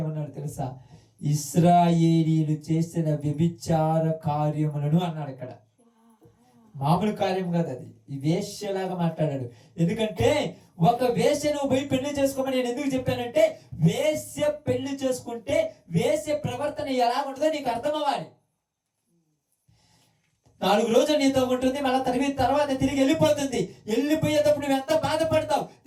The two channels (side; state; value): both; identical; correlation 1.00